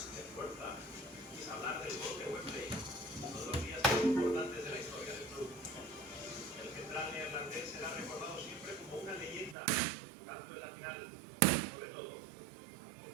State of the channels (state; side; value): drops out; left; at 9.6 s